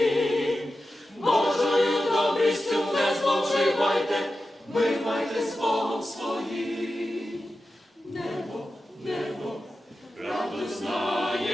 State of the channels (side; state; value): both; normal; correlation 0.92